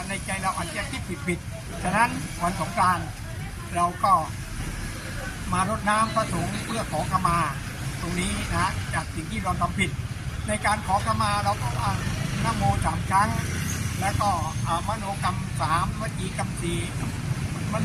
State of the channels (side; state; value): both; identical; correlation 1.00